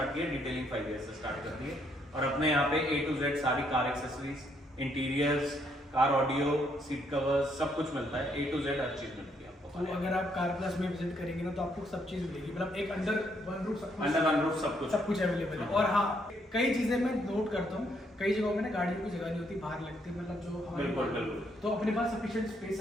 किया, डिटेलिंग 5 ईयर से स्टार्ट कर दी है। और अपने यहाँ पे A to Z सारी car accessories, interiors, car audio, seat covers सब कुछ मिलता है। A to Z हर चीज मिलती है आपको। तो अगर आप कार प्लस में विजिट करेंगे ना तो आपको सब चीज मिलेगी, मतलब एक अंडर वन रूफ सब कुछ अवेलेबल है। और हाँ, कई चीजें मैं नोट करता हूँ, कई जगहों में ना गाड़ियों की जगह नहीं होती, बाहर लगती है, मतलब जो हमारे बिल्कुल। तो अपने पास सफिशिएंट स्पेस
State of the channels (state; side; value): normal; both; correlation 0.72